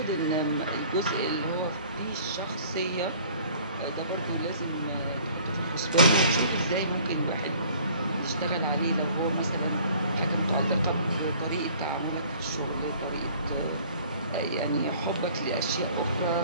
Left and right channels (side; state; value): both; inverted; correlation -0.52